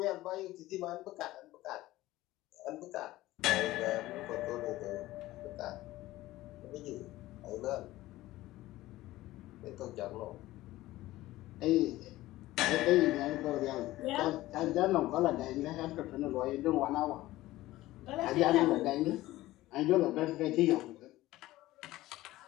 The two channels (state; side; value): quieter; right; 16.8 dB